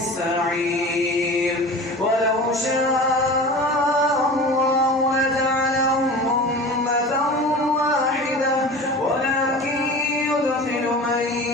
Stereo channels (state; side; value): normal; both; correlation 0.36